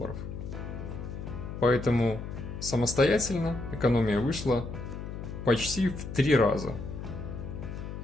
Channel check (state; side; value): noise; left; hum, 8 dB below the sound